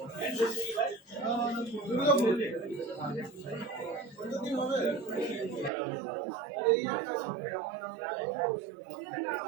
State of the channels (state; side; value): drops out; left; at 5.7 s